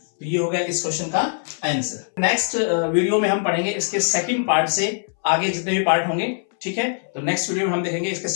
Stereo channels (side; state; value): right; silent; 63 dB below the other